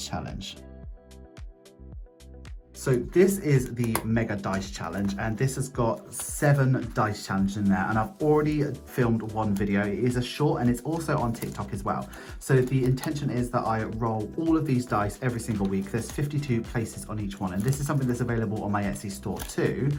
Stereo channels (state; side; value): identical; both; correlation 1.00